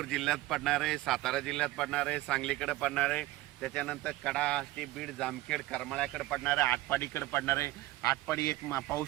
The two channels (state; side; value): quieter; left; 17.9 dB